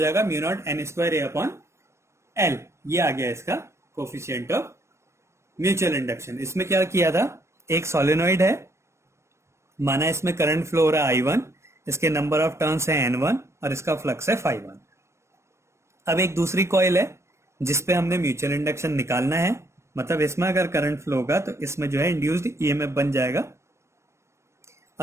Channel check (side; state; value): left; late; 0.13 ms